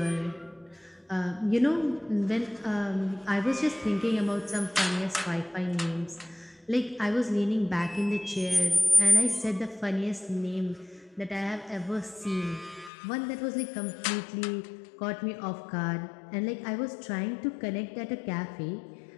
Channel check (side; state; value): right; drops out; at 12.9 s